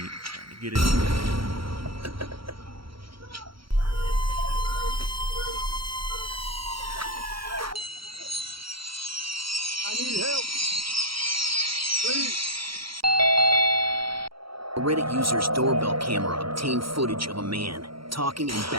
trying to get in. I need help. Please. A Reddit user's doorbell camera obtained footage of a man talking and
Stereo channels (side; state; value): left; late; 0.74 ms